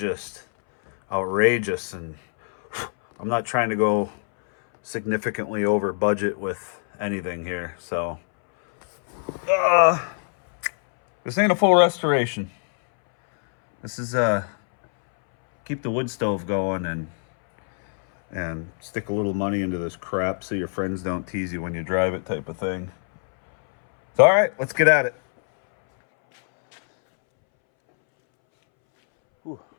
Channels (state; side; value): silent; right; 63 dB below the other